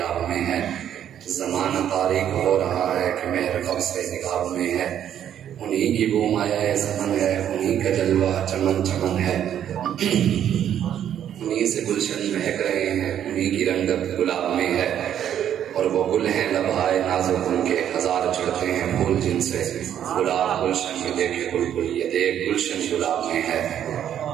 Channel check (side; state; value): left; quieter; 10.0 dB